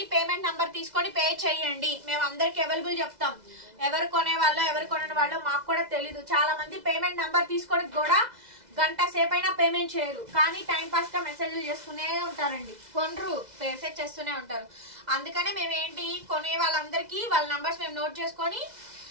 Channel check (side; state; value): left; late; 2.0 ms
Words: పేమెంట్ నెంబర్ తీసుకొని పే చేయండి. మేము అందరికి అవైలబుల్ చెప్తాం. ఎవరు కొనే వాళ్ళు ఎవరు కొనే వాళ్ళు మాకు కూడా తెలీదు. చాలా మంది పేమెంట్ నెంబర్ తీసుకొని కూడా గంట సేపు అయినా పేమెంట్ చేయరు, కానీ టైం పాస్ గా మెసేజ్లు చేస్తూనే ఉంటారండి. కొనరు, మెసేజ్ చేస్తూనే ఉంటారు. అందుకనే మేము ఏంటి కొనే వాళ్ళందరికీ వాళ్ళ నెంబర్స్ మేము నోట్ చేసుకొని